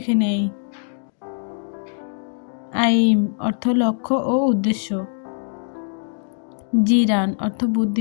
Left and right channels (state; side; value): silent; right; digital silence